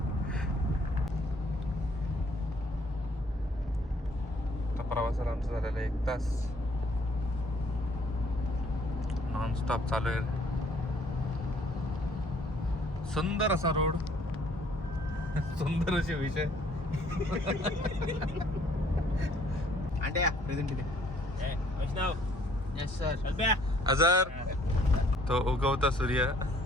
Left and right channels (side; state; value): both; normal; correlation 0.61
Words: प्रवासाला आमचं झालेलं आहे 1 तास. नॉन स्टॉप चालू आहे. सुंदर असा रोड. सुंदर असे विषय. अंड्या प्रेझेंट इथे. वैष्णव यस सर. अजर तो उगवता सूर्य